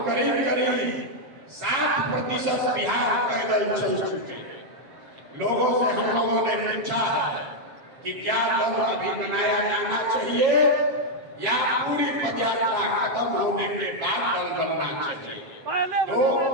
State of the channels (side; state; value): left; late; 7.4 ms